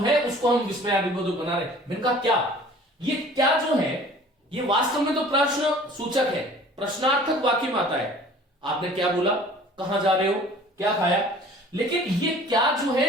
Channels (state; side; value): normal; both; correlation 0.48